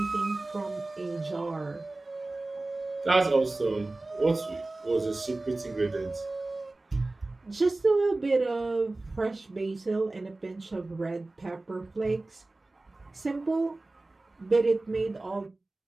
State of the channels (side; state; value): left; quieter; 3.0 dB